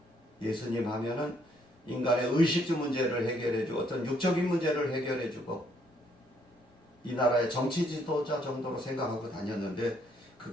예수님 하면은 인간의 의식주 문제를 해결해주고 어떤 육적인 문제를 해결해주고 이 나라의 정치 지도자 정도로 생각하고 다녔는데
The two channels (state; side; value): normal; both; correlation 0.69